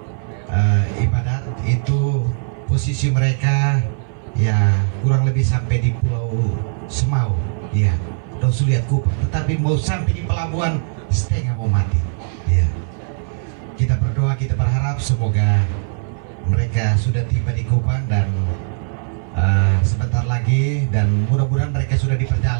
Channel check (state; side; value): silent; left; 61 dB below the other